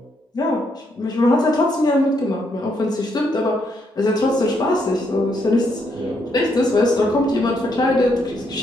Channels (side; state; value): both; normal; correlation 0.75